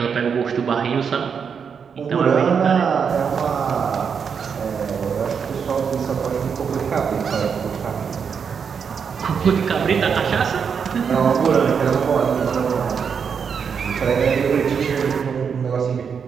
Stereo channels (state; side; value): quieter; left; 6.6 dB